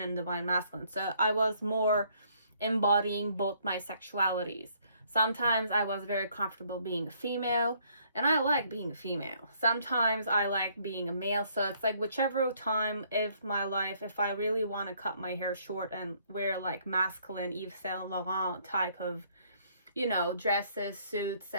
and divine masculine. So I was more embodying both my sexualities. Sometimes I was very comfortable being a female, and I like being a female. Sometimes I like being a male, so it's like whichever time of my life, if I really want to cut my hair short and wear like masculine Yves Saint Laurent type of, you know, dresses, suits,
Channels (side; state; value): both; inverted; correlation -0.65